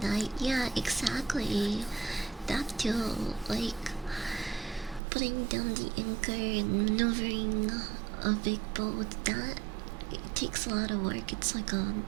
die. Yeah, exactly. That too, like putting down the anchor and maneuvering a big boat, that it takes a lot of work. It's like an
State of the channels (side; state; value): left; drops out; at 5.0 s